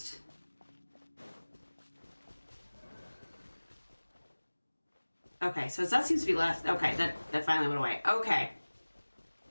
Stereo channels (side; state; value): both; inverted; correlation -1.00